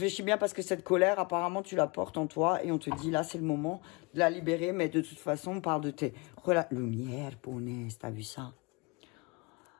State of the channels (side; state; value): right; quieter; 27.9 dB